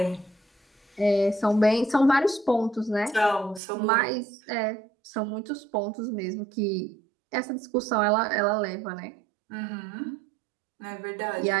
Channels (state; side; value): drops out; left; at 3.6 s